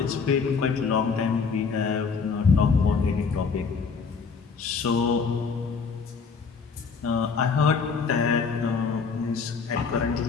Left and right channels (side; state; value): right; quieter; 5.3 dB